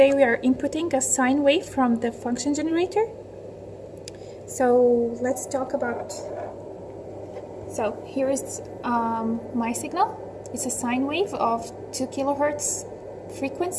we are inputting a sine wave from the function generator. So let's talk about, so here is my signal. It's a sine wave of 2 kilohertz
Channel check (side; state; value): both; identical; correlation 1.00